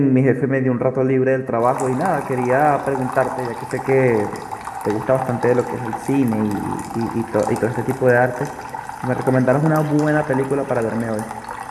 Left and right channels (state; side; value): identical; both; correlation 1.00